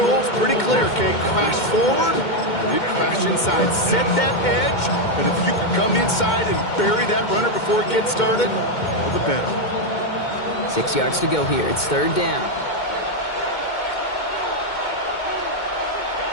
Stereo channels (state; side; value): late; right; 2.2 ms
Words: pretty clear, Kate. Crash forward, and then crash inside. Set that edge, and if you can come inside and bury that runner before it gets started, all the better. 6 yards to go here. It's 3rd down.